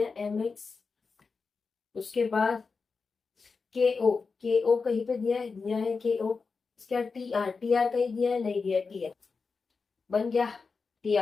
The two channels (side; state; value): right; quieter; 4.7 dB